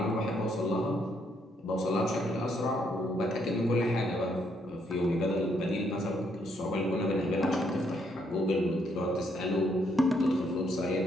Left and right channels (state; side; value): normal; both; correlation 0.73